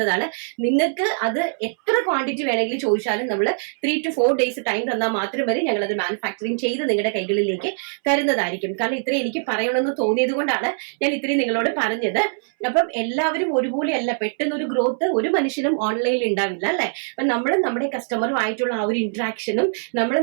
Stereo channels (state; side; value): silent; left; 64 dB below the other